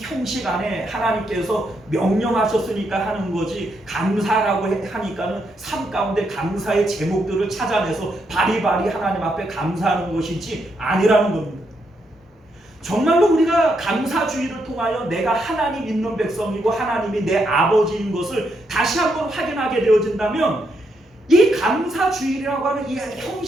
안에 하나님께서 명령하셨으니까 하는 거지 감사라고 하니까는 삶 가운데 감사의 제목들을 찾아내서 바리바리 하나님 앞에 감사하는 것이지 아니라는 겁니다. 정말로 우리가 감사주의를 통하여 내가 하나님 있는 백성이고 하나님이 내 아버지인 것을 다시 한번 확인하게 되어진다면 이 감사주일이라고 하는 이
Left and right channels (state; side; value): normal; both; correlation 0.79